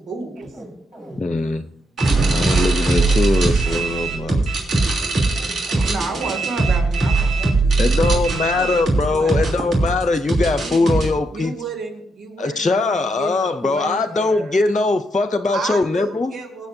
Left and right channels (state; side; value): normal; both; correlation 0.80